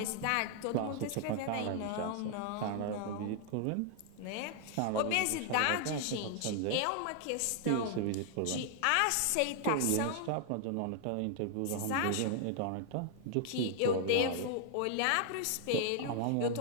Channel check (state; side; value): different; both; correlation 0.00